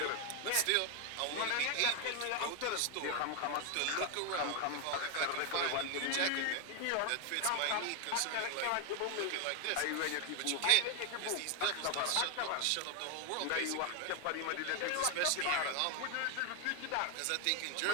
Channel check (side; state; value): both; different; correlation 0.01